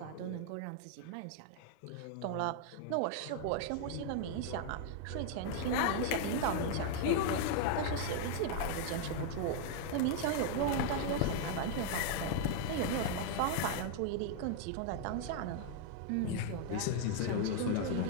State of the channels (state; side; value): different; both; correlation 0.00